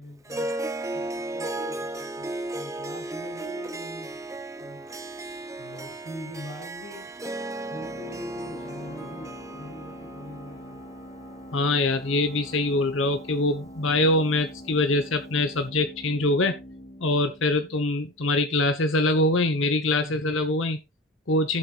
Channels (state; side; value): normal; both; correlation 0.31